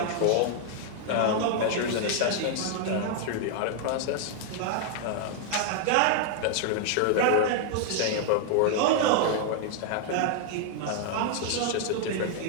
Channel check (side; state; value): both; different; correlation 0.00